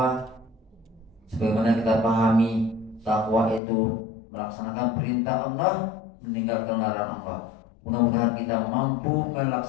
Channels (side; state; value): right; drops out; at 3.6 s